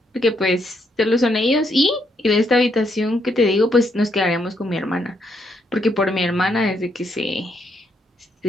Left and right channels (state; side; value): normal; both; correlation 0.76